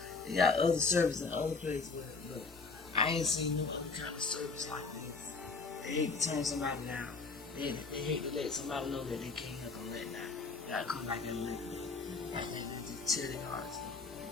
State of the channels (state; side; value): quieter; right; 4.2 dB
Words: they got other services in other places, but I ain't seen no other kind of service like this. They hate to turn somebody down. They hate to let somebody know that they can't help them let down. They gotta come like that and let them. Like they just tear their hearts up.